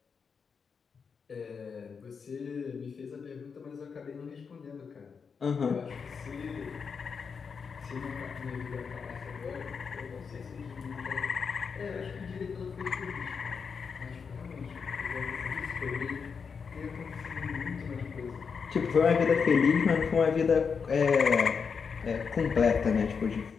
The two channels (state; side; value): quieter; right; 5.9 dB